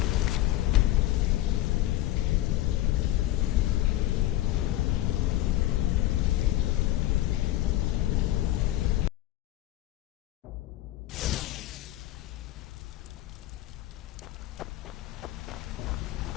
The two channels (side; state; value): right; quieter; 15.2 dB